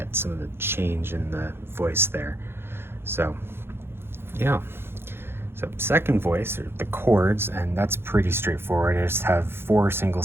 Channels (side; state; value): left; late; 0.11 ms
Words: some of the change in the voice there. So yeah, so second voice are the chords, and that's pretty straightforward. I just have 4 single